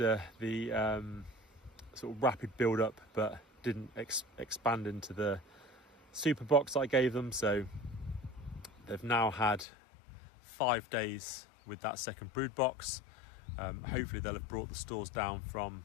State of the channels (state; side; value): drops out; right; at 9.7 s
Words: the sort of rapid build-up, but didn't expand into the super box I gave them. So they've now had 5 days with that second brood box. Hopefully they'll have brought the stores down from